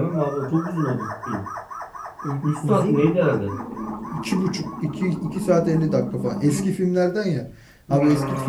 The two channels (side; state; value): both; identical; correlation 1.00